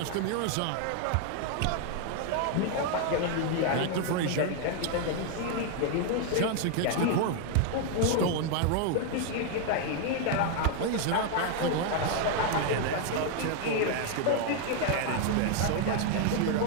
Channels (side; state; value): both; different; correlation 0.00